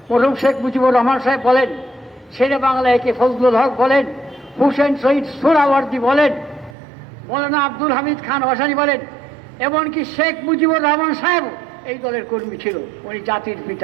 মরহুম শেখ মুজিবুর রহমান সাহেব বলেন, শেরে বাংলা একে ফজলুল হক বলেন, হুসেন শহীদ সোহরাওয়ার্দী বলেন, মৌলানা আব্দুল হামিদ খান ভাসানী বলেন, এমনকি শেখ মুজিবুর রহমান সাহেব এই দলের কর্মী ছিল। উনি জাতির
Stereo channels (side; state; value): left; drops out; at 6.8 s